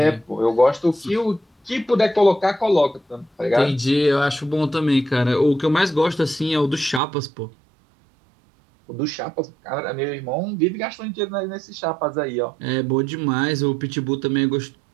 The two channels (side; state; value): left; drops out; at 7.0 s